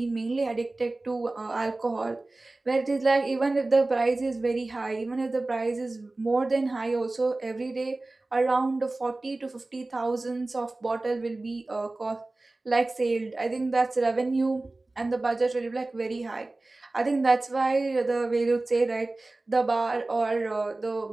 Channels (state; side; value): quieter; left; 3.0 dB